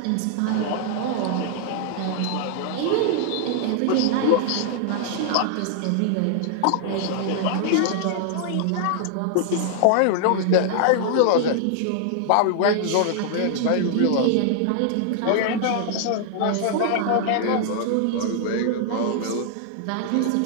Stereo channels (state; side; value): different; both; correlation -0.01